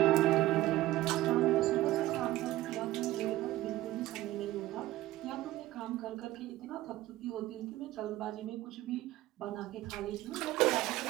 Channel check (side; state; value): left; quieter; 15.9 dB